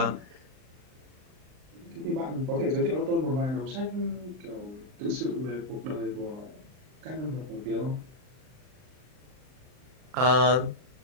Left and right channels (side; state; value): left; late; 39 ms